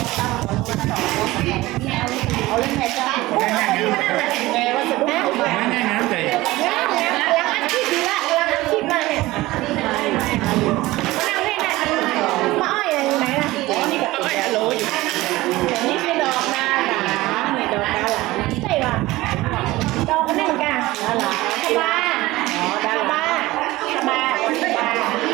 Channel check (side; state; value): left; quieter; 18.7 dB